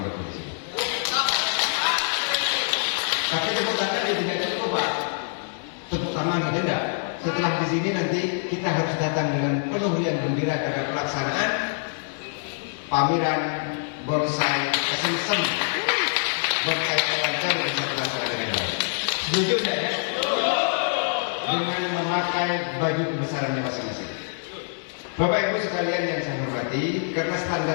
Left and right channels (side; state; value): right; silent; 62 dB below the other